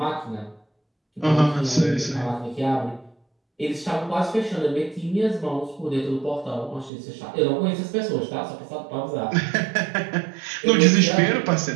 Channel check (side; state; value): left; drops out; at 6.9 s